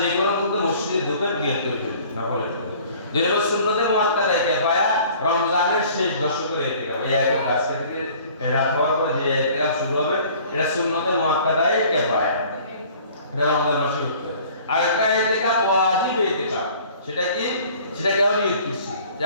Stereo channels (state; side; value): inverted; both; correlation -0.51